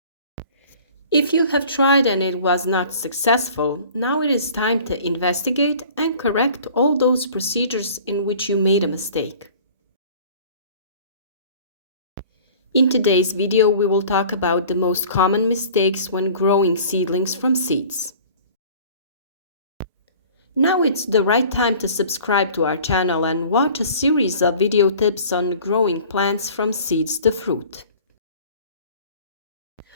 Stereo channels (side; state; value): both; inverted; correlation -0.46